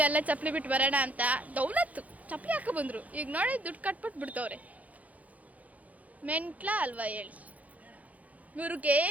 ಎಲ್ಲ ಚಪ್ಪಲಿ ಬಿಟ್ಟು ಬರೋಣ ಅಂತ. ದೌಲತ್ತು ಚಪ್ಪಲಿ ಹಾಕ ಬಂದ್ರು. ಈಗ ನೋಡಿ ದುಡ್ಡು ಕಟ್ಬಿಟ್ಟು ಬಿಡ್ತವ್ರೆ. ಮೆಂಟ್ಲ ಅಲ್ವಾ ಹೇಳಿ. ಇವ್ರಿಗೆ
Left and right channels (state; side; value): late; left; 0.073 ms